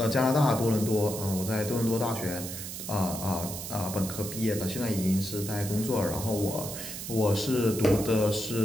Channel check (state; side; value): noise; right; hiss, 8 dB below the sound